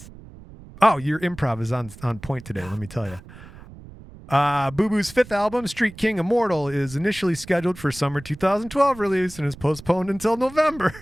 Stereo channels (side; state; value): right; noise; rumble, 18 dB below the sound